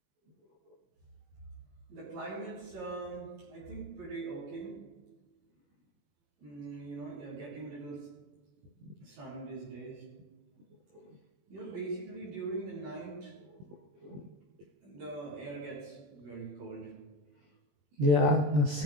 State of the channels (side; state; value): left; late; 21 ms